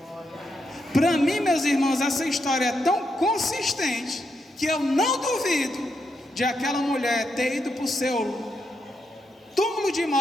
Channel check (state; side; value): normal; both; correlation 0.81